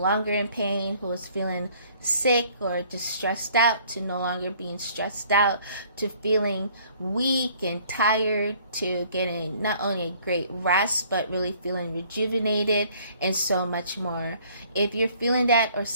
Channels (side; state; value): both; inverted; correlation -0.58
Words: in pain, who was feeling sick or just stressed out to no longer being stressed out, to feeling weak and tired, to getting not only a great rest but really feeling rejuvenated, and so much more. If you're feeling that or